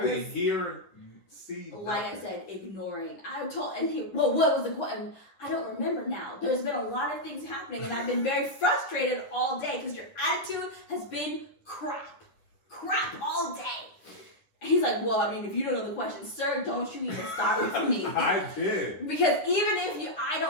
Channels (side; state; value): right; late; 10 ms